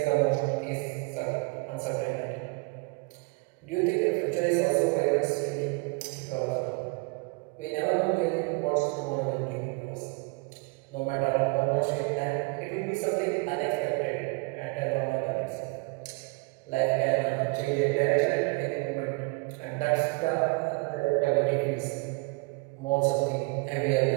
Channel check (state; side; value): quieter; left; 28.5 dB